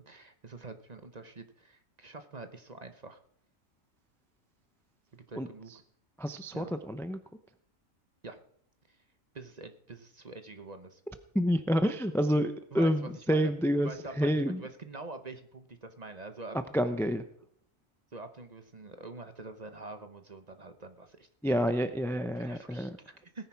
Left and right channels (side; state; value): both; normal; correlation 0.84